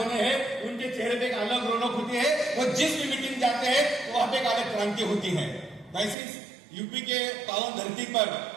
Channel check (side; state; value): left; drops out; at 6.2 s